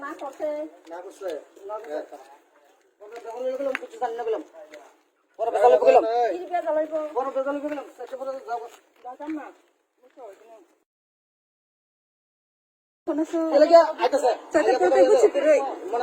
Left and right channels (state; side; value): identical; both; correlation 1.00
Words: না করতে গেলাম কিছু জানি না গেলাম বড় বেজালে গেলাম কি বে জ্বালাইব বড় বেজালে গেলাম সেক্টর পরে যাব দাদা না মুছো কোন সো এলাকা আইতাছে Sate porque mucho pero